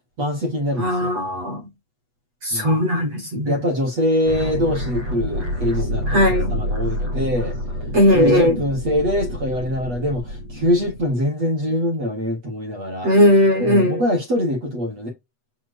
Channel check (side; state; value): left; late; 8.2 ms